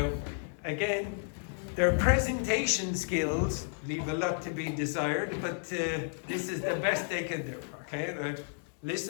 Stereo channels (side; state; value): right; silent; 56 dB below the other